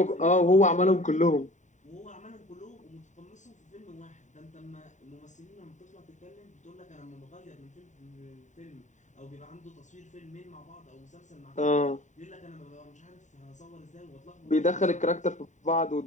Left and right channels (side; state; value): right; late; 0.35 ms